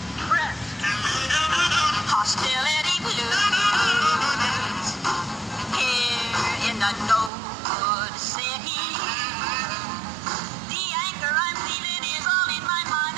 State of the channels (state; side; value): drops out; left; at 7.3 s